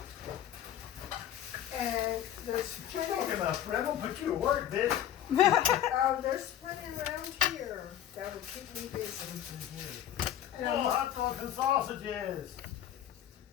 And there's You're plenty. talking about Fred. I'm going to put you to work, bitch. Oh, there's plenty around here that will keep me busy. And Oh, I, hot dogs and sausages.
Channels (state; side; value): quieter; right; 10.8 dB